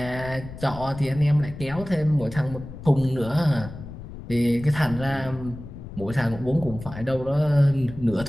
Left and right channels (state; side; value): noise; left; rumble, 13 dB below the sound